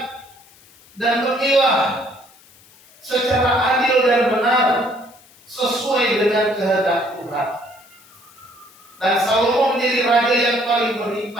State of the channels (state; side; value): noise; left; hiss, 27 dB below the sound